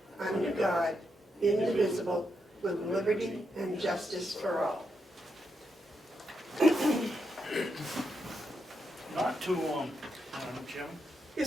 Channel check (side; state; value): both; normal; correlation 0.83